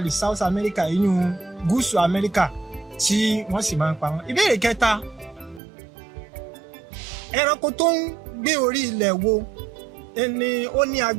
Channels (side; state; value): left; drops out; at 5.6 s